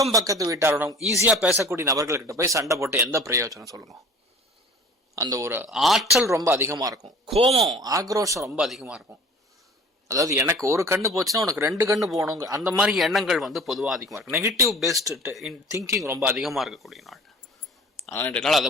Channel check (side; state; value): both; normal; correlation 0.45